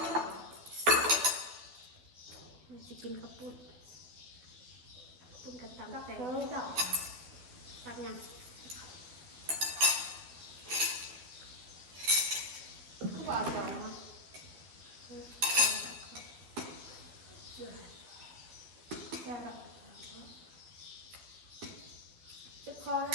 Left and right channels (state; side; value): late; left; 12 ms